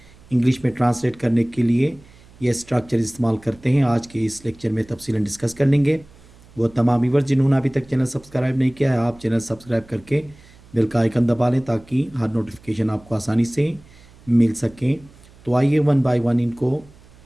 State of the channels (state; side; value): noise; right; hum, 25 dB below the sound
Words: इंग्लिश में ट्रांसलेट करने के लिए ये स्ट्रक्चर इस्तेमाल करते हैं। आज के इस लेक्चर में तफसीलन डिस्कस कर लेंगे। वो तमाम व्यूअर्स जिन्होंने अभी तक चैनल सब्सक्राइब नहीं किया है, आप चैनल सब्सक्राइब करके बेल का आइकन दबा लें ताकि हर नोटिफिकेशन आपको आसानी से मिल सकें। तो आइए वन बाय वन इनको